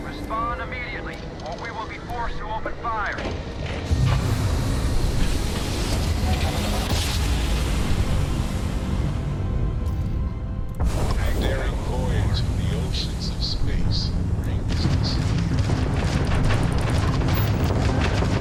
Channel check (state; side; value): identical; both; correlation 1.00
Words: respond immediately, or we will be forced to open fire. A daring voyage of the oceans of space brings us here.